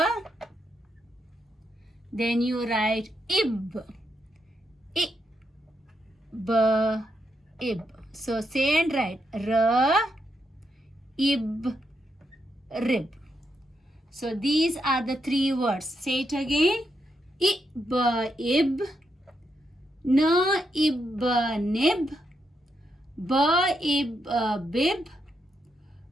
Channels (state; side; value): normal; both; correlation 0.81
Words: Then you write ib. Ib. So say and write R, ib, rib. So these are the three words. Say it again. Ib, na ib nib, ba ib bib,